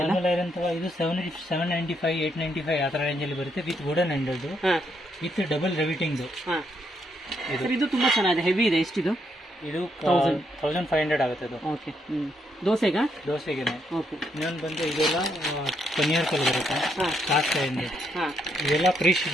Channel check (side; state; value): both; normal; correlation 0.76